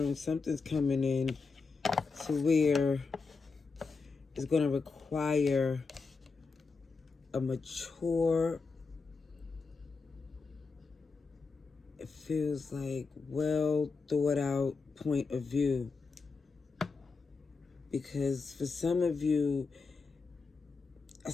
Something's coming in to where it's going to require a mature, it feels like well thought out point of view. Because for some of you, I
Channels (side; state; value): right; quieter; 4.5 dB